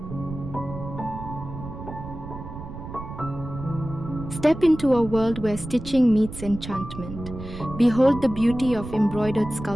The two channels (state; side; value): noise; right; rumble, 11 dB below the sound